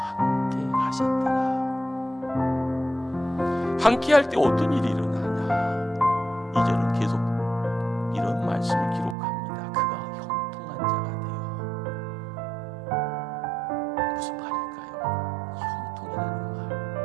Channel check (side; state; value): left; drops out; at 9.2 s